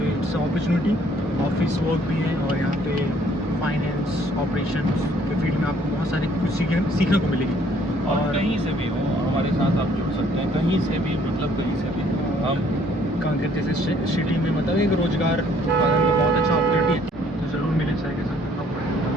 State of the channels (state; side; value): normal; both; correlation 0.62